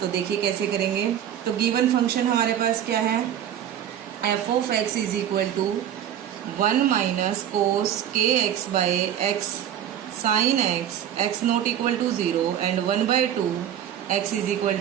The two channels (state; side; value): quieter; left; 10.3 dB